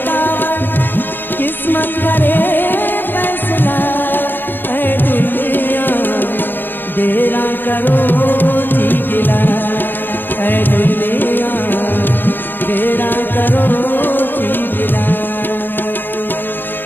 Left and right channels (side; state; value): right; late; 0.093 ms